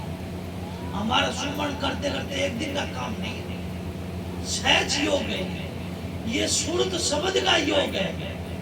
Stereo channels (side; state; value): both; identical; correlation 1.00